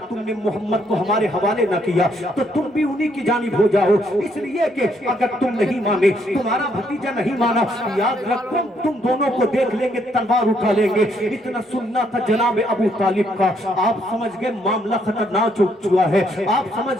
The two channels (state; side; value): normal; both; correlation 0.71